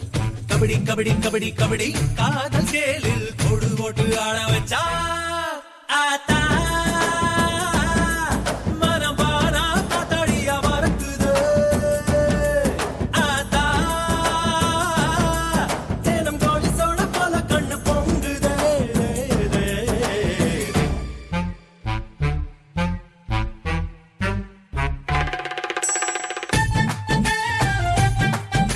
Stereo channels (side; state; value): both; identical; correlation 1.00